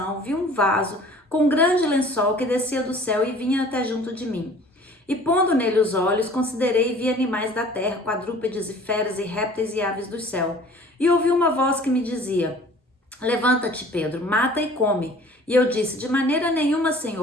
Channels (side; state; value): both; normal; correlation 0.49